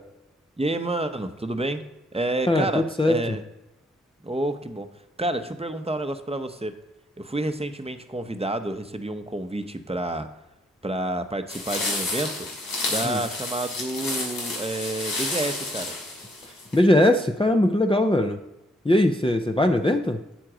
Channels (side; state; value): both; normal; correlation 0.71